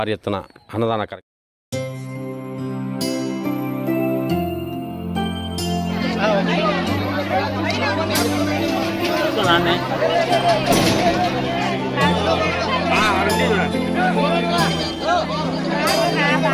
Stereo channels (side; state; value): both; identical; correlation 1.00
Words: ఎత్తున అన్నదాన కార్యక్రమం.